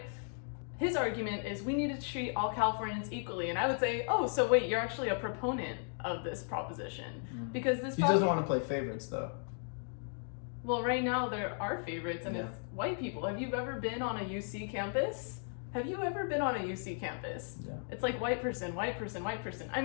his argument is we need to treat all Californians equally, and I would say, oh, so wait, you're actually a proponent of this proposition because this. He doesn't want to play favorites, though. Well, right now there are favorites, and it's white people. Have you ever been on a UC campus? Have you ever been on a UC campus? Yeah. It's like white person, white person, white person. I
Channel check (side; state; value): right; silent; 54 dB below the other